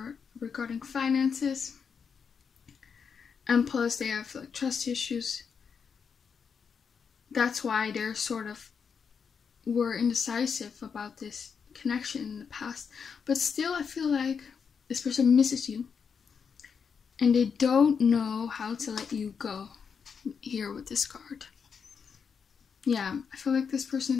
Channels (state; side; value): quieter; right; 6.3 dB